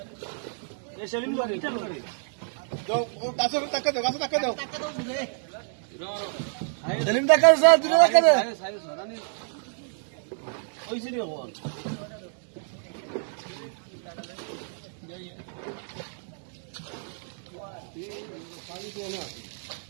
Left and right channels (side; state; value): left; silent; digital silence